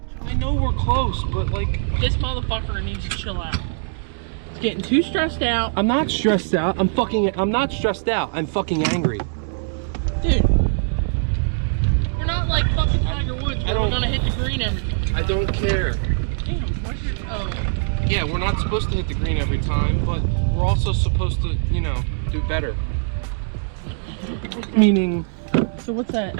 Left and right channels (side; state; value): left; silent; digital silence